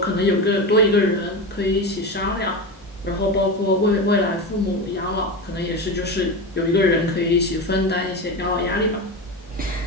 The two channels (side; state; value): both; normal; correlation 0.22